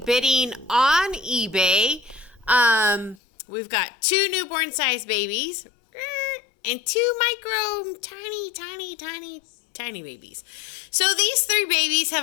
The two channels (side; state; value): right; drops out; at 3.2 s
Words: on eBay. We've got 2 newborn size babies and 2 micro tiny babies. So these 3 babies